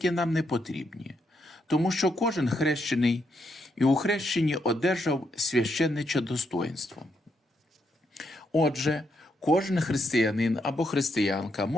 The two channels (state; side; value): normal; both; correlation 0.78